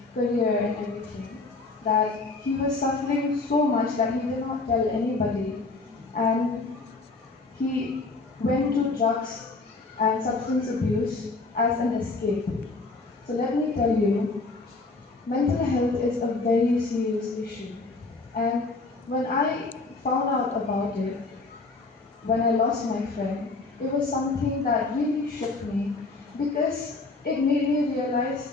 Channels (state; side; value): quieter; right; 3.6 dB